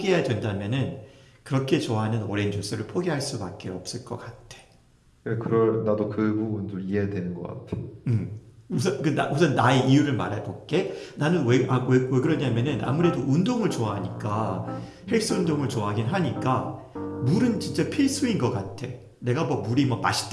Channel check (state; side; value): identical; both; correlation 1.00